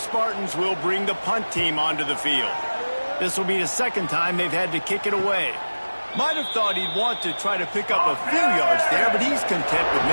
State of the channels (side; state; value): both; inverted; correlation -1.00